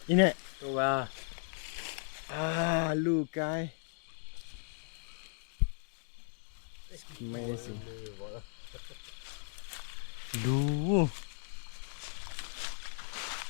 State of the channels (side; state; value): right; silent; digital silence